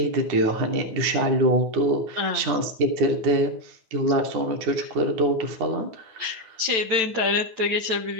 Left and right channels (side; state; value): left; late; 9.1 ms